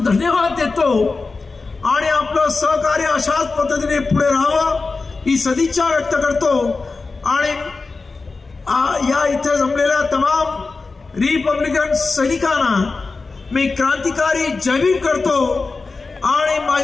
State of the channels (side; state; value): right; quieter; 4.0 dB